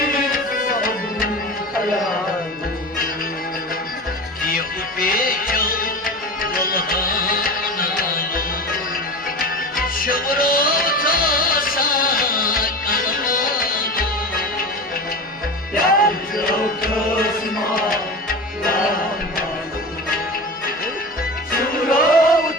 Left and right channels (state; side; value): normal; both; correlation 0.30